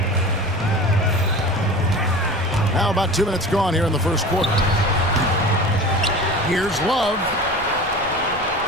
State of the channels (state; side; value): noise; left; rumble, 17 dB below the sound